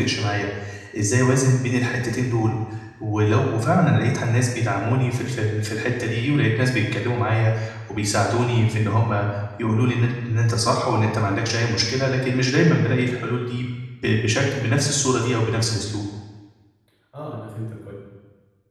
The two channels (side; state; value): both; identical; correlation 1.00